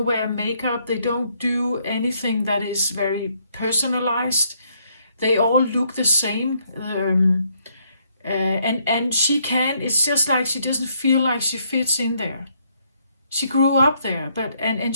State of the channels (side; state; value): both; inverted; correlation -0.71